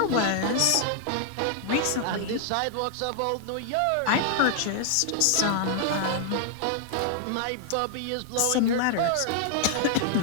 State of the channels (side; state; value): both; different; correlation 0.00